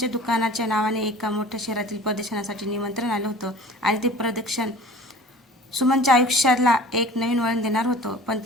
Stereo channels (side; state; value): both; normal; correlation 0.43